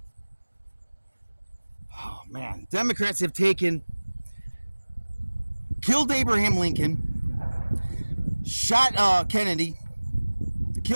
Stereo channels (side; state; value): both; inverted; correlation -1.00